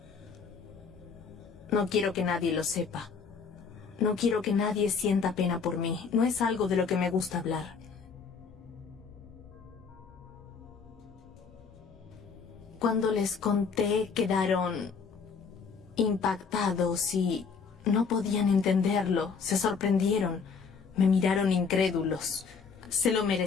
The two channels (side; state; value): right; quieter; 5.5 dB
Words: No quiero que nadie lo sepa. No quiero que nadie sienta pena por mí. No es algo de lo que me gusta hablar. Cuando les conté, quedaron impactados y no podían entenderlo. Se sorprendieron. Me miraron incrédulos. Se lo